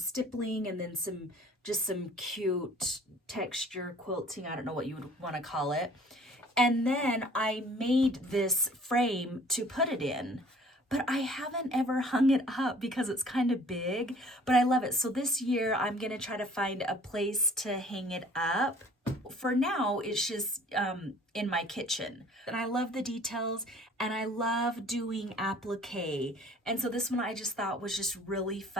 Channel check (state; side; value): normal; both; correlation 0.52